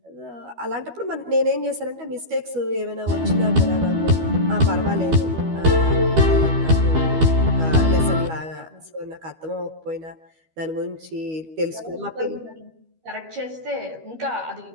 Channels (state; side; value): late; left; 12 ms